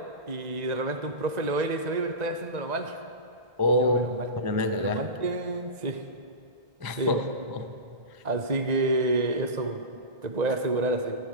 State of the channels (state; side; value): late; left; 1.9 ms